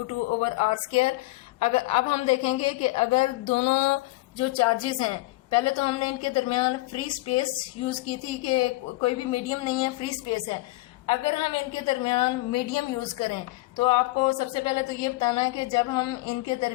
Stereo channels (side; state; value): right; quieter; 20.6 dB